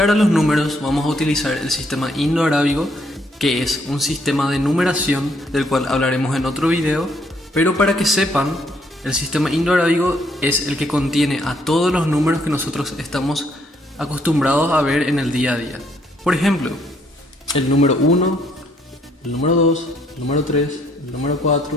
a los números vamos a utilizar el sistema indo-arábigo, que es un sistema de numeración del cual hablaremos en otro video, pero para que sepan, el sistema indo-arábigo es el que contiene a todos los números que nosotros estamos acostumbrados a ver en el día a día. Por ejemplo, el número 1, el número 2, el número 3, el número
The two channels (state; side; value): normal; both; correlation 0.69